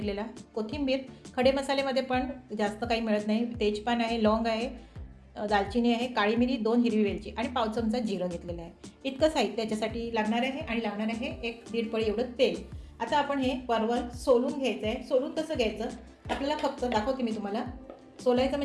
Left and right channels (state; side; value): identical; both; correlation 1.00